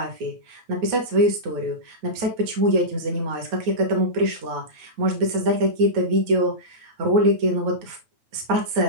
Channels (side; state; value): left; late; 9.2 ms